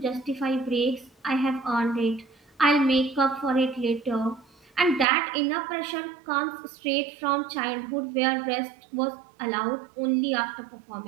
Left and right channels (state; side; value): drops out; left; at 5.1 s